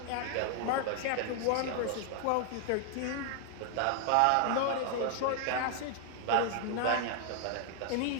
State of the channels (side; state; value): both; different; correlation 0.00